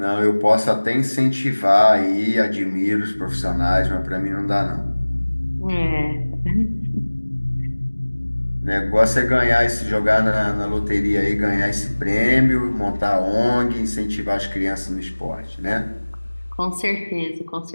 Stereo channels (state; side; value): inverted; both; correlation -1.00